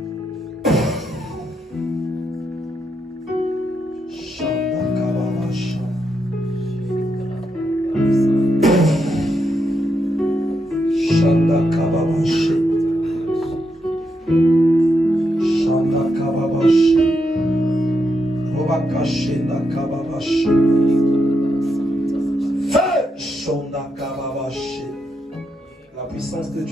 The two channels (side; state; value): both; normal; correlation 0.82